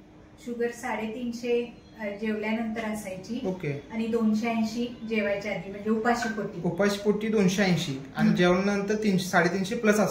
शुगर 350 जेवल्यानंतर असायची. ओके. आणि 280 जेवायच्या आधी, म्हणजे उपाशी पोटी 280 आणि जेवणानंतर 350 प्लस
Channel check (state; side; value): identical; both; correlation 1.00